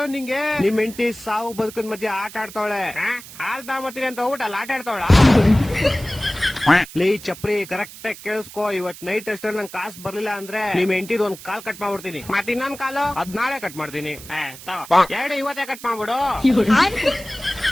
ನಿಂಗೆ. ನಿಮ್ ಹೆಂಡತಿ ಸಾವು ಬದುಕಿನ ಮಧ್ಯೆ ಆಟ ಆಡ್ತಾವಳೆ. ಹಾಲ್ ತಗೊಂಬತ್ತೀನಿ ಅಂತ ಹೋಗ್ಬಿಟ್ಟು ಆಟ ಆಡ್ತಾವಳ. ಲೇ ಚಪ್ರಿ, ಕರೆಕ್ಟ್ ಆಗಿ ಕೇಳಿಸ್ಕೋ. ಇವತ್ ನೈಟ್ ಅಷ್ಟೇ ನಂಗೆ ಕಾಸು ಬರ್ಲಿಲ್ಲ ಅಂದ್ರೆ ನಿಮ್ ಹೆಂಡತಿದ್ ಒಂದ್ ಕಾಲ್ ಕಟ್ ಮಾಡ್ಬಿಡ್ತೀನಿ. ಮತ್ ಇನ್ನೊಂದ್ ಕಾಲು ಅದ್ ನಾಳೆ ಕಟ್ ಮಾಡ್ತೀನಿ. ಎರಡು ಇವತ್ತೇ ಕಟ್ ಮಾಡ್ಬಿಡು.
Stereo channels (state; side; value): noise; right; hiss, 16 dB below the sound